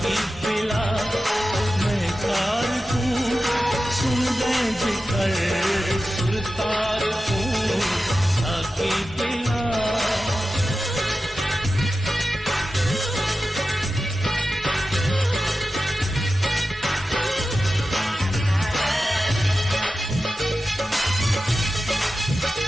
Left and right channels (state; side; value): normal; both; correlation 0.93